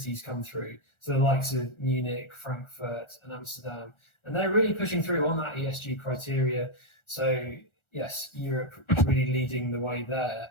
come through. So the likes of Munich, Frankfurt, and Amsterdam, and they're really pushing through on that ESG criteria. So yes, Europe is really leading the way there.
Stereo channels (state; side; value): late; right; 1.4 ms